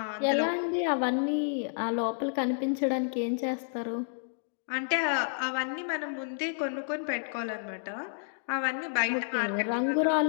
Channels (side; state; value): right; silent; digital silence